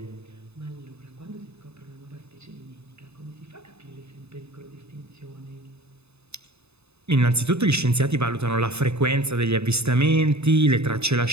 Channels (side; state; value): left; late; 0.80 ms